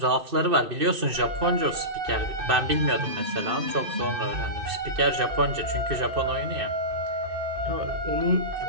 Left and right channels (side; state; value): left; late; 2.6 ms